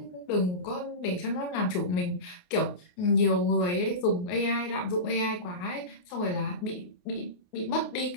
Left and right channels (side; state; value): right; late; 28 ms